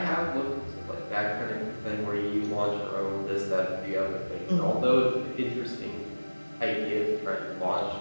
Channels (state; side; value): inverted; both; correlation -1.00